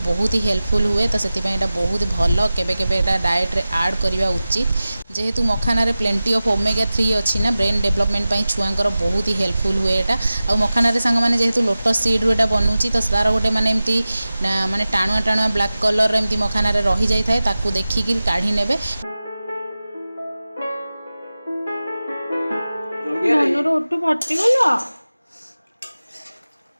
बहुत ही हेल्पफुल हुए। तो से बहुत भल केबे केबे डाएट रे ऐड करवा उचित जेहेतु मखाना रे प्लेंटी ऑफ ओमेगा 3 अच्छी ना ब्रेन डेवलपमेंट छुआंकर बहुत ही हेल्पफुल हुए। एटा आ मखाना रे सांग माने जेहेतु लोटस सीड रो एटा बनउची तो तार गोटे माने एमती माने टाणुआ टाणुआ ब्लैक कलर एमती मखाना रे रही जाय थाए ताकू देखिकी काढी नेबे। धनुर ओटू फाटीगला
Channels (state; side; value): inverted; both; correlation -0.96